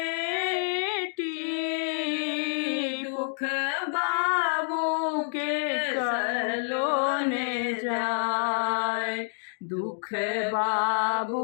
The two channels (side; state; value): right; silent; digital silence